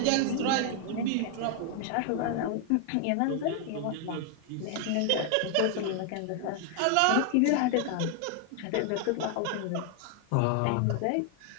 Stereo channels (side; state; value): both; different; correlation 0.00